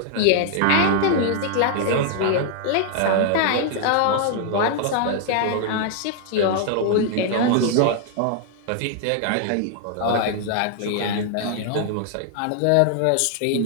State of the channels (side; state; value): both; different; correlation 0.00